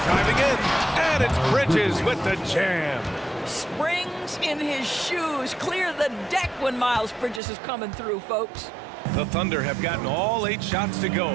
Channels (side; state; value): left; drops out; at 7.4 s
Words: Diving in, and it's Bridges with the jam. Springs in his shoes. Clear the deck when Miles Bridges is coming through, folks. The Thunder have gotten all 8 shots to